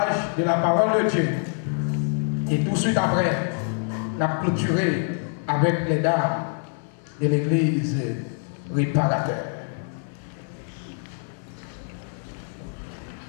de la parole de Dieu et tout de suite après, la clôturer avec les dames de l'église réparateur.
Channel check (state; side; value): silent; right; 61 dB below the other